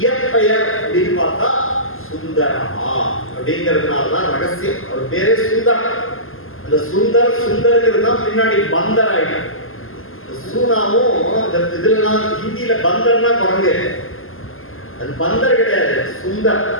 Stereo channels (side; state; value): right; late; 0.60 ms